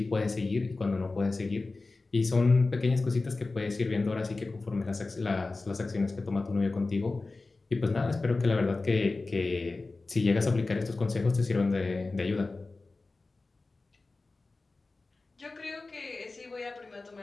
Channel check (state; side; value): quieter; right; 3.5 dB